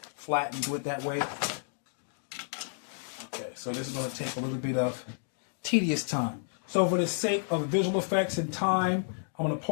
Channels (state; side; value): silent; right; digital silence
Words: flat and do it that way. Okay, so this is going to take a little bit of tedious time. So for the sake of visual effects and time, I'm going to